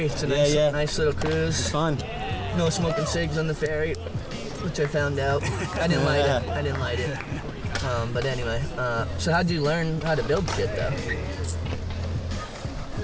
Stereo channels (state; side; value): identical; both; correlation 1.00